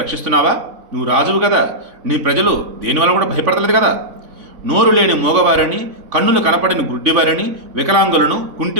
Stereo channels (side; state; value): left; late; 3.5 ms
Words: రక్షిస్తున్నావా? నువ్వు రాజువు కదా, నీ ప్రజలు దేనివల్ల కూడా భయపడతలేదు కదా. నోరు లేని మూగవారిని, కన్నులు కనపడని గుడ్డివారిని, వికలాంగులను,